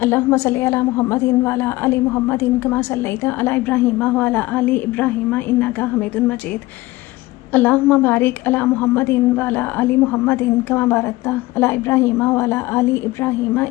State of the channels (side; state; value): right; quieter; 19.1 dB